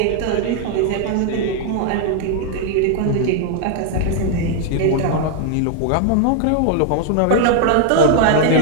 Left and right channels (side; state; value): both; different; correlation 0.00